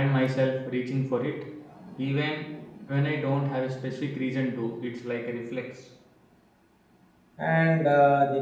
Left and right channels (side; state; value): both; identical; correlation 1.00